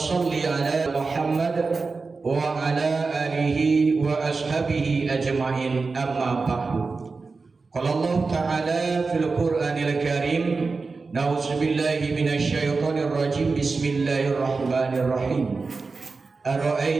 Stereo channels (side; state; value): left; quieter; 4.2 dB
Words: ala Muhammad wa ala alihi wa ashabihi ajma'in, amma ba'du. Qala Allah ta'ala fil Qur'anil Karim, na'udzubillahi minasyaitonir rajim, bismillahirrahmanirrahim.